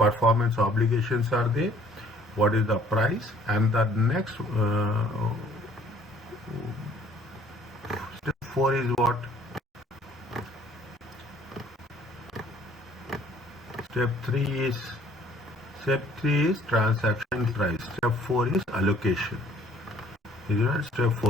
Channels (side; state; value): both; normal; correlation 0.58